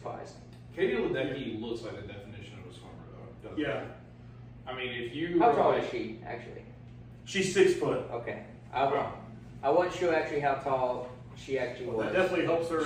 Katie Ledecky looks like the definition of a swimmer, though. doesn't Yeah. she? I mean, if you How tall is she, actually? She's 6 foot. Okay. I wasn't sure actually how tall she actually That was. definitely helps her.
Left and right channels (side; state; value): both; identical; correlation 1.00